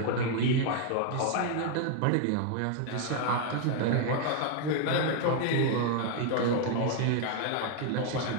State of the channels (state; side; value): different; both; correlation 0.00